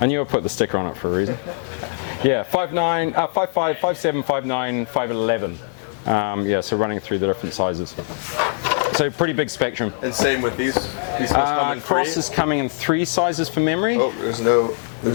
I knew I put the sticker on it for a reason. Yeah, 5'9", 5'5", 5'7", 5'9", 5'11". Yeah, so running through the different sizes. So pretty big spectrum. And same with these come in Cross three? is coming in 3 sizes for memory. Oh, there's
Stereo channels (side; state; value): right; silent; digital silence